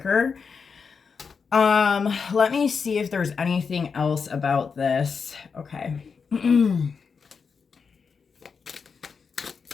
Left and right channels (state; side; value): quieter; right; 5.6 dB